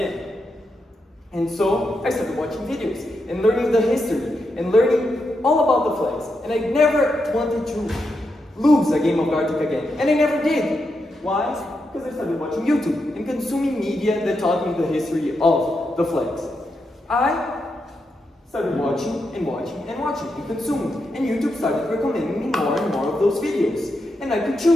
And so I started watching videos and learning the history and learning all about the flags. And I never wanted to lose a game of Gartic again. And I never did. Why? Because I started watching YouTube and consuming media that taught me the history of the flags. I started watching and consuming. And YouTube started recommending me more and more of those videos. And I could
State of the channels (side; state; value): both; normal; correlation 0.84